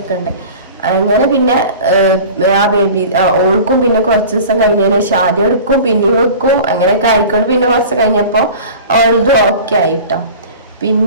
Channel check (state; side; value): inverted; both; correlation -0.39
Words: ഉണ്ട്. അങ്ങനെ പിന്നെ ആ ബേബി ഓൾക്കും പിന്നെ കുറച്ച് ദിവസം കഴിഞ്ഞതിന് ശേഷം ആദ്യം എടുക്കും പിന്നെ വെക്കും അങ്ങനെയൊക്കെ ആയിക്കൊണ്ട് പിന്നെ കുറച്ച് കഴിഞ്ഞപ്പോ ഓൾതും ഓക്കെ ആയിട്ടോ.